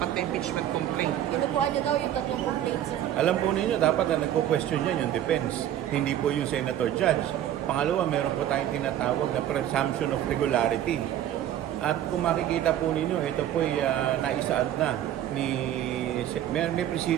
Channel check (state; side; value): quieter; left; 11.5 dB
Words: na impeachment complaint. Kinukuha nyo daw yung 3 complaints. Alam po ninyo, dapat na nagpo-question yan yung defense, hindi po yung senator judge. Pangalawa, meron po tayong tinatawag na presumption of regularity. At kung makikita po ninyo, ito po ay naisaad na may